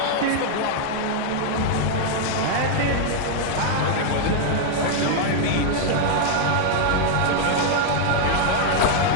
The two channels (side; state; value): both; different; correlation -0.01